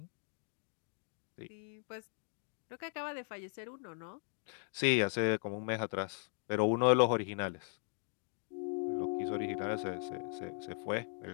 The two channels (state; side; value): silent; right; 52 dB below the other